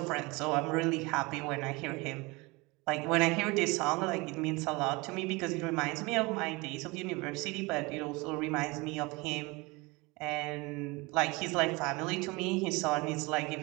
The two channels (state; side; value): quieter; left; 24.9 dB